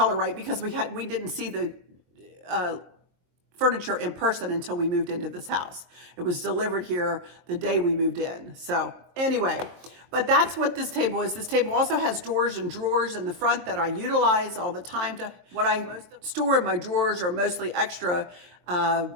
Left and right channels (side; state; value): left; late; 22 ms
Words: right because we didn't see the furniture in person until we moved into this house. It was delivered here the day we moved in. So anyway, but that's what this table is. This table also has doors and drawers in the front that I utilize all the time. What I store in my drawers are mostly extra